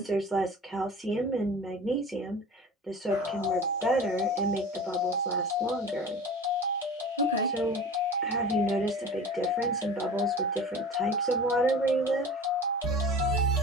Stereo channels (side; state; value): both; normal; correlation 0.38